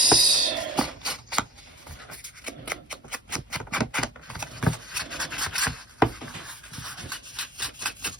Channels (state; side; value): normal; both; correlation 0.43